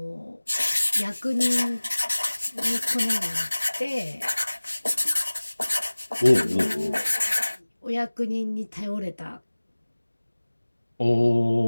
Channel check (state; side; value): inverted; both; correlation -1.00